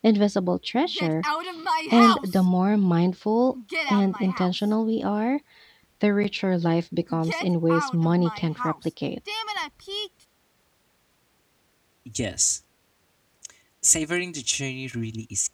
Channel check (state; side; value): identical; both; correlation 1.00